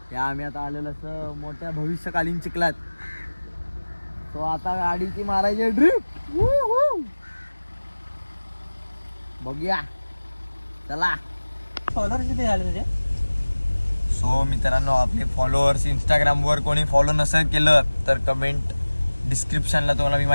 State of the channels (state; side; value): inverted; both; correlation -1.00